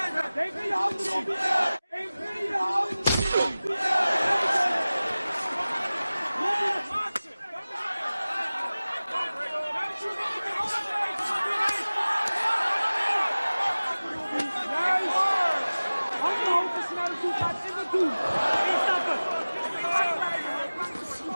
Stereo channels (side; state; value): both; inverted; correlation -0.98